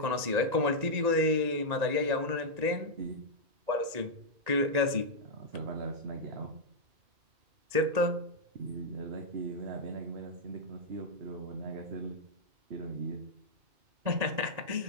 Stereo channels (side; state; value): left; late; 1.9 ms